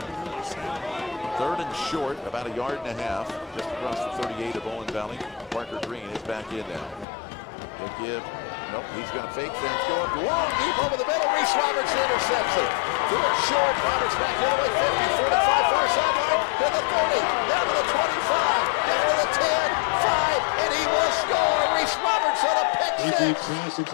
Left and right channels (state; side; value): drops out; right; at 7.1 s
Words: really sound. 3rd and short, about 1.5 yards, just across the 38 of Owen Valley. Parker Green is back in now. He'll give, nope, he's going to fake things, go up long, deep over the middle. Reese Roberts intercepts it. Threw it short, Roberts back the other way, 50, 45, far sideline, to the 30, down to the 25, down to the 10, 5, and he will score. Reese Roberts on a pick six.